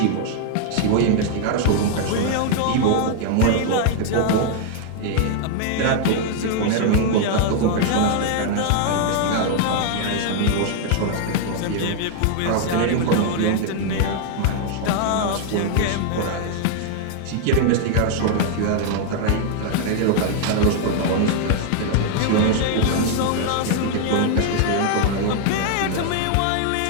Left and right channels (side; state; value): both; different; correlation 0.00